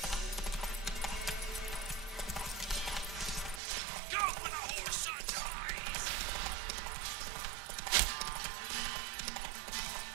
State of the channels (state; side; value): drops out; left; at 3.6 s